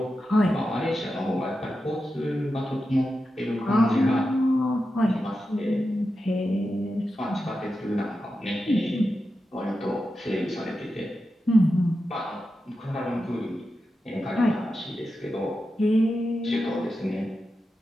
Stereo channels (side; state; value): both; normal; correlation 0.90